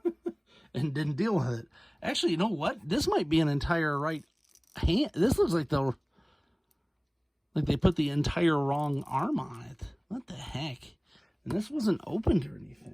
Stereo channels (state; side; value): identical; both; correlation 1.00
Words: And didn't deal with it. Actually, you know what? This might be an entire right hand. This looks like they put the entire wrong arm on it. What the heck? And this wasn't opened or